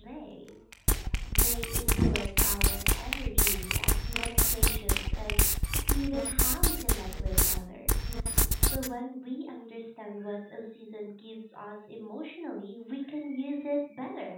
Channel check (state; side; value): identical; both; correlation 1.00